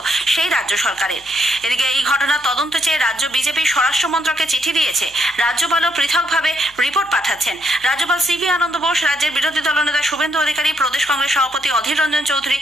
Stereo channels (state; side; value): noise; left; hum, 27 dB below the sound